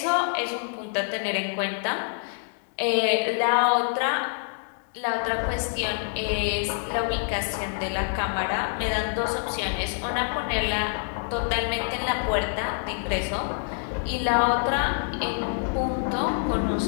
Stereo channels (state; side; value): silent; right; 61 dB below the other